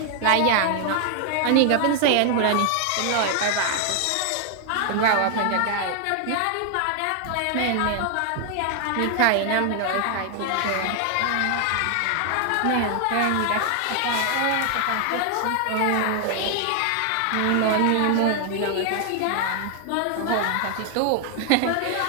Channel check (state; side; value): different; both; correlation 0.00